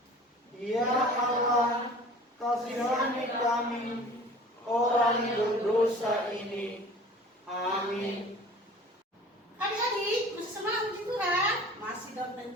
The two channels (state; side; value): normal; both; correlation 0.45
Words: ya Allah, kasihani kami, orang berdosa ini. Amin. Adik-adik, masih semangat puji Tuhan? Masih dong